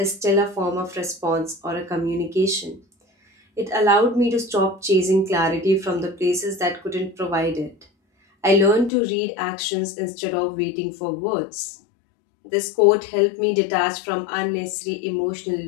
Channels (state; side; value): drops out; right; at 8.9 s